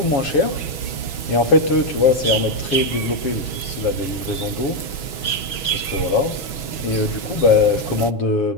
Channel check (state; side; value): late; right; 6.2 ms